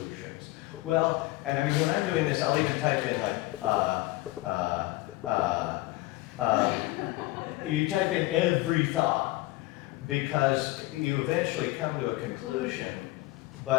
Well, and I mean, when I'm doing this, I'll even type in you type in every thought, because you eventually come to a conclusion,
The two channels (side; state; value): right; quieter; 19.1 dB